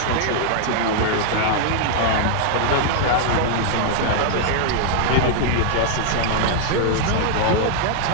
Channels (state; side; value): different; both; correlation 0.00